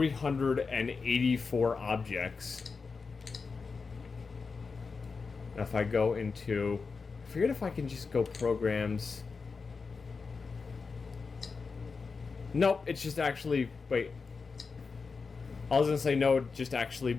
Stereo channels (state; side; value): quieter; right; 4.8 dB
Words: objects. Now if I go into, I forget if I can just go programs. Nope, it's just actually, wait. I was gonna say no, it just actually